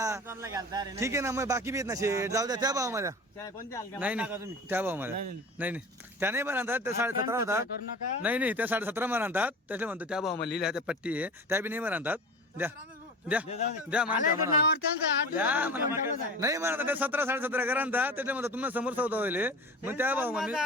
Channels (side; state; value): both; normal; correlation 0.35